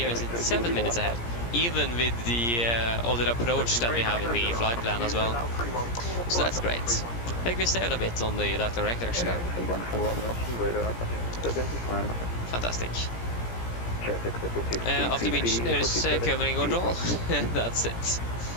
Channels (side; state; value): right; late; 17 ms